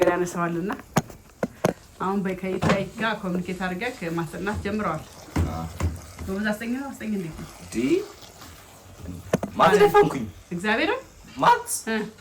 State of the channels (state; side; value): identical; both; correlation 1.00